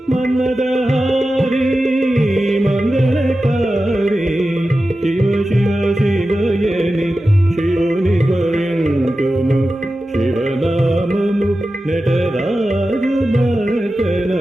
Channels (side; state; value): both; normal; correlation 0.93